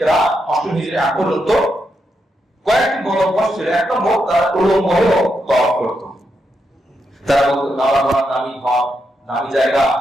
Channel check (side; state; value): both; normal; correlation 0.83